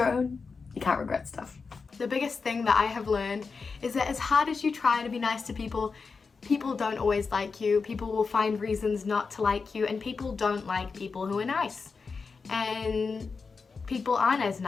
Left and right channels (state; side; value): quieter; right; 4.8 dB